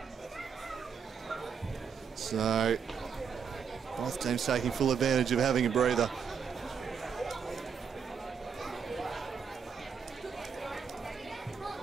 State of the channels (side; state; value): left; quieter; 6.7 dB